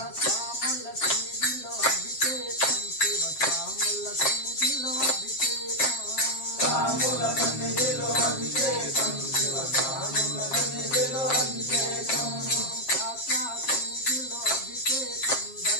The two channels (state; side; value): late; right; 7.4 ms